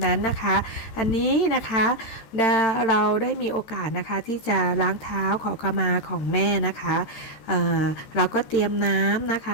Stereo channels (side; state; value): right; late; 13 ms